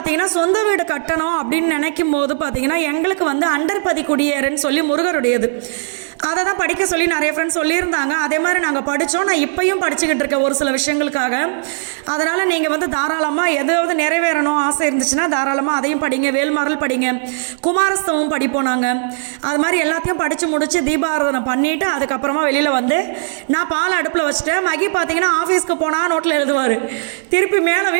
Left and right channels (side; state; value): left; silent; digital silence